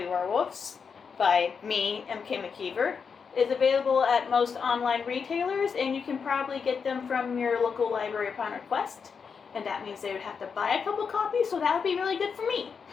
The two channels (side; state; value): right; quieter; 6.0 dB